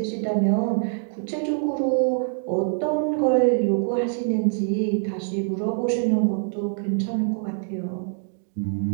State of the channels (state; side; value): silent; left; digital silence